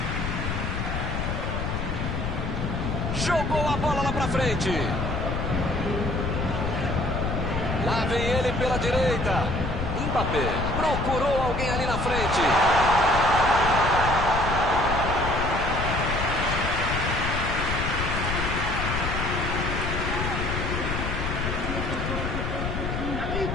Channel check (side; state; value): left; noise; rumble, 3 dB below the sound